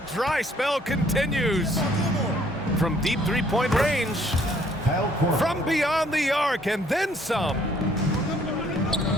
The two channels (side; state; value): both; normal; correlation 0.63